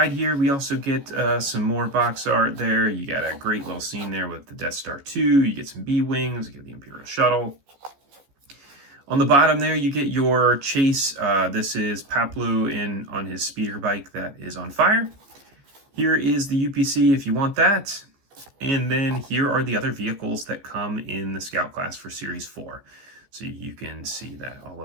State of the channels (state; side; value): late; left; 14 ms